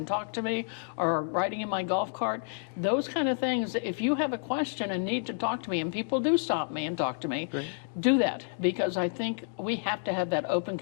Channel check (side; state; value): right; silent; digital silence